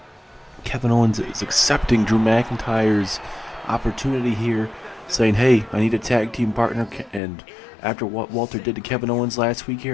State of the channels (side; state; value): right; drops out; at 7.2 s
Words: Kevin Owens is accepting Drew McIntyre's opportunity here, saying, hey, I need a tag team partner, and after what Walter did to Kevin Owens last week